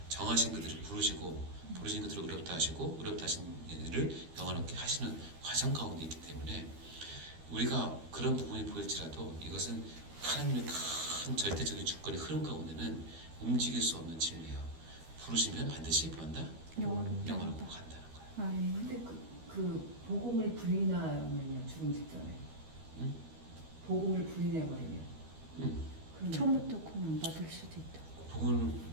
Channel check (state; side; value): late; left; 12 ms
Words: 정하신 그들을 부르신 그들을 의롭다 하시고 의롭다 하신 이를 영원롭게 하시는 과정 가운데 있기 때문에 우리가 그런 부분이 보일지라도 이것은 하나님의 큰 절대적인 주권의 흐름 가운데는 움직일 수 없는 진리예요. 부르시면 반드시 뭐한다? 영원롭고 간다는 거예요. 아멘. 근데 그 복음을 부인하면요 죽음 직전에 복음을 부인해버리면 그럼 처음부터 구원 안 받을 수도 있다. 복음